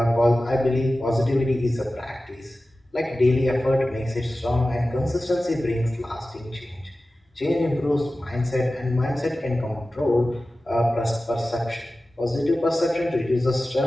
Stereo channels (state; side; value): normal; both; correlation 0.95